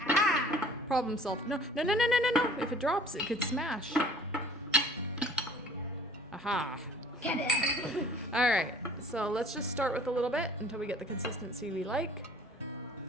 Problem solved. No. If it drops, it could smash. Aha. Get it. All right, so let's just start with a little bit until we get the consistency we like.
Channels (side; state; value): both; normal; correlation 0.50